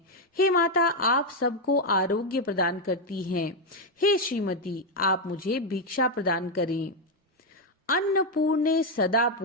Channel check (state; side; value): normal; both; correlation 0.03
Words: हे माता, आप सबको आरोग्य प्रदान करती हैं। हे श्रीमती, आप मुझे भिक्षा प्रदान करें। अन्नपूर्णे सदा